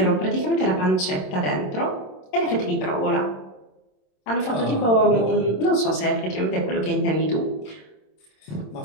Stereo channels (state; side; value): late; right; 27 ms